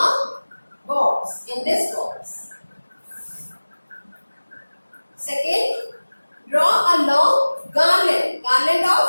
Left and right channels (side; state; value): both; inverted; correlation -1.00